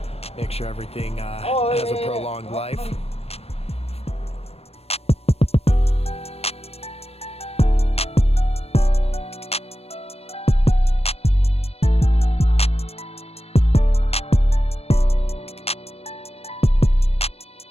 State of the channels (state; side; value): late; right; 0.29 ms